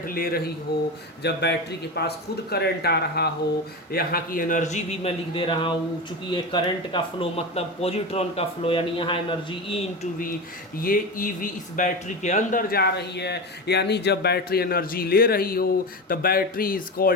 ले रही हो, जब बैटरी के पास खुद करंट आ रहा हो, यहाँ की एनर्जी भी मैं लिख दे रहा हूँ, चूँकि ये करंट का फ्लो मतलब पॉजिट्रॉन का फ्लो, यानी यहाँ एनर्जी E इंटू वी, ये EV इस बैटरी के अंदर जा रही है। यानी जब बैटरी एनर्जी ले रही हो तो battery is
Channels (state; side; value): normal; both; correlation 0.22